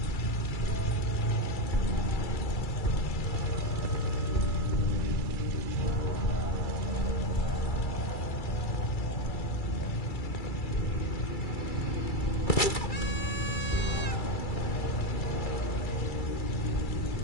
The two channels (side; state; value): right; late; 2.3 ms